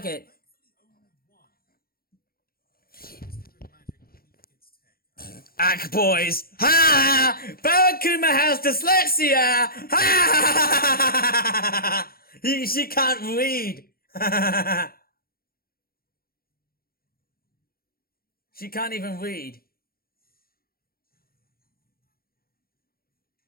it. Ack, boys. Ha! Barakuma has dyslexia! Ha! She can't read. She can't even read.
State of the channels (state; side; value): late; right; 0.43 ms